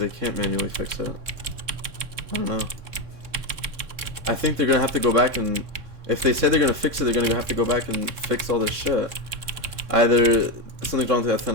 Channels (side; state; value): left; late; 3.6 ms